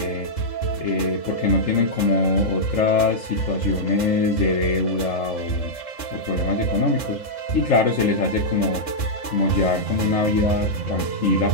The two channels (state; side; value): late; right; 3.7 ms